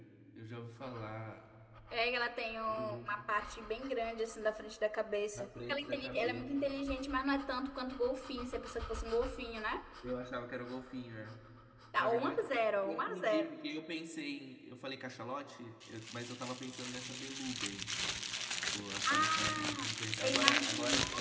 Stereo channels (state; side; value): identical; both; correlation 1.00